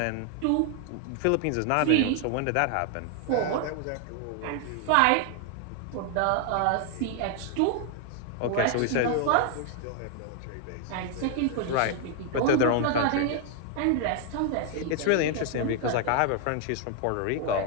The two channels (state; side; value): different; both; correlation 0.00